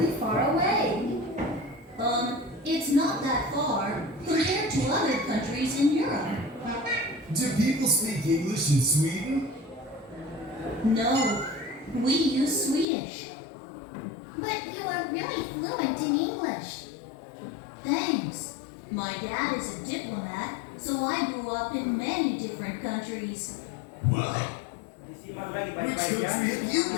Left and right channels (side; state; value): right; drops out; at 12.9 s